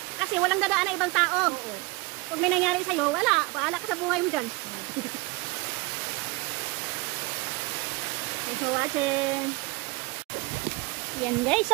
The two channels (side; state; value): left; quieter; 24.6 dB